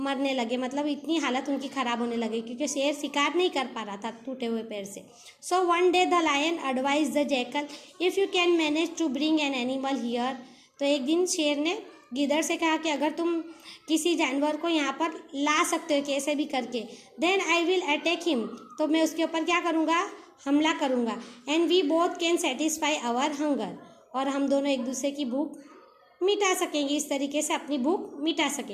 लगे. मतलब इतनी हालत उनकी ख़राब होने लगी क्योंकि शेर शिकार नहीं कर पा रहा था टूटे हुए पैर से. So one day the lion advise the jackal if you can manage to bring an animal here. तो एक दिन शेर ने गीदड़ से कहा कि अगर तुम किसी जानवर को यहाँ पर ला सकते हो कैसे भी करके, then I will attack him. तो मैं उसके ऊपर क्या करूँगा, हमला करूँगा. And we both can satisfy our hunger. और हम दोनों एक दूसरे की भूख मिटा सकेंगे, इस तरीके से अपनी भूख मिटा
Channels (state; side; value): identical; both; correlation 1.00